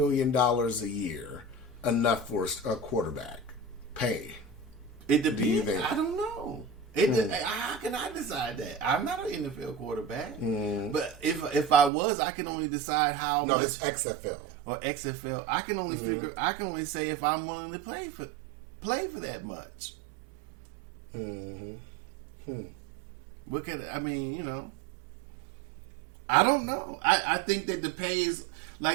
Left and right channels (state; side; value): drops out; left; at 11.9 s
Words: a year enough for a quarterback pay? It depends. I don't know. How can I decide that? I'm not an NFL quarterback. But if I was, I can only decide how. No, this XFL or XFL. I can only figure. I can only say if I'm willing to play for that much. What can I mean? I don't know. I think that the pay is,